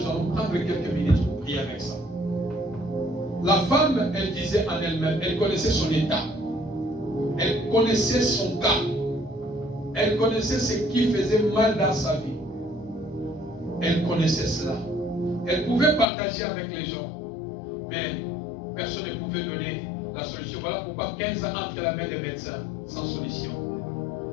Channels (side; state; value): right; drops out; at 16.1 s